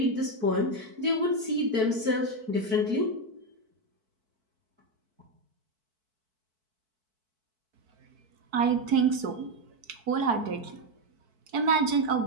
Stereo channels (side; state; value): left; late; 4.6 ms